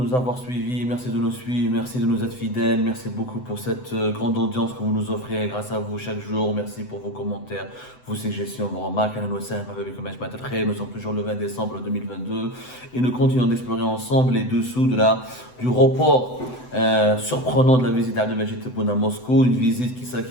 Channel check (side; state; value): right; late; 8.0 ms